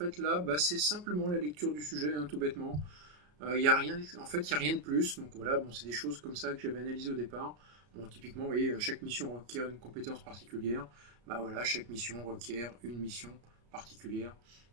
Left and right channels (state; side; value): late; left; 33 ms